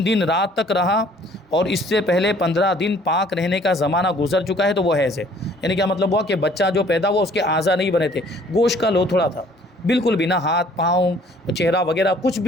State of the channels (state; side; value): normal; both; correlation 0.57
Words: دن رات تک رہا اور اس سے پہلے 15 دن پاک رہنے کا زمانہ گزر چکا ہے تو وہ حیض ہے۔ یعنی کیا مطلب ہوا کہ بچہ جو پیدا ہوا اس کے اعضاء نہیں بنے تھے، گوشت کا لوتھڑا تھا، بالکل بھی نہ ہاتھ پاؤں چہرہ وغیرہ کچھ